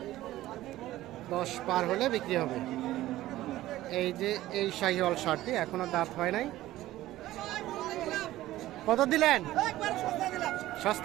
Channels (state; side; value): quieter; left; 15.5 dB